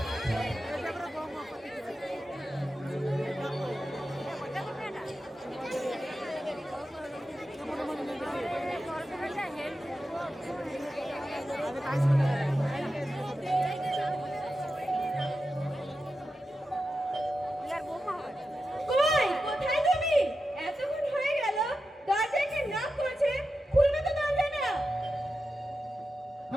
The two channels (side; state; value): both; normal; correlation 0.91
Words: কই, কোথায় তুমি? এতক্ষণ হয়ে গেল, দরজায় কে নক করেছে? খুলবে তো দরজা না।